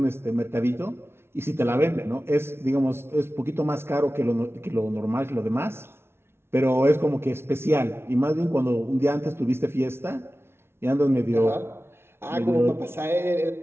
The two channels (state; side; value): late; left; 0.12 ms